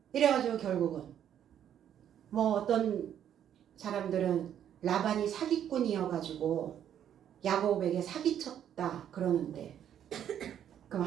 이래가지고 결국은 뭐 어떤 사람들은 라반이 사기꾼이어가지고 야곱에게 사기쳤다 그러는데, 그럼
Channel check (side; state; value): left; quieter; 9.9 dB